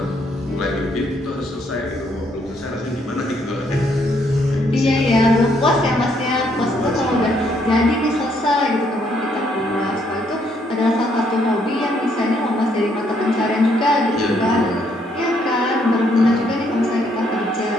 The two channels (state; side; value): normal; both; correlation 0.71